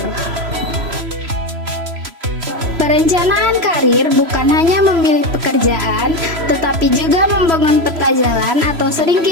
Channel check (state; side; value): late; left; 3.0 ms